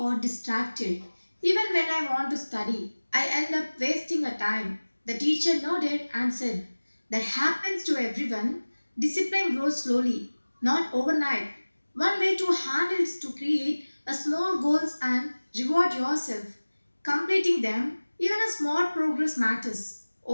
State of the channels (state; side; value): inverted; both; correlation -1.00